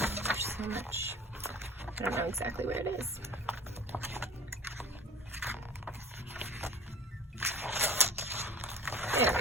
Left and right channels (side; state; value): both; normal; correlation 0.43